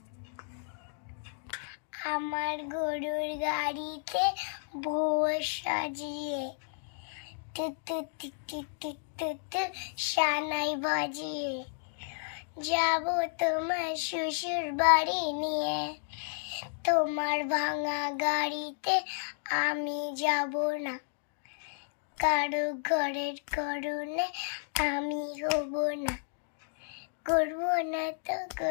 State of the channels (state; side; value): silent; right; digital silence